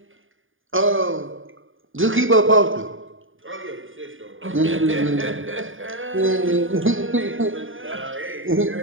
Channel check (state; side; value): late; left; 0.58 ms